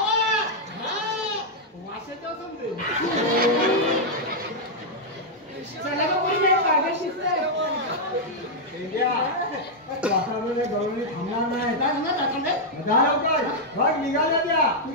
वाशाचं समजेल. चला का कोणी नाही पागल शिकतंय. पेंड्या. वातावरणाच्या गवळणी थांबणार नाही. काय म्हणणार दाखवलंय? जा लवकर. बघ निघाल्या त्या.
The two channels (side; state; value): both; normal; correlation -0.03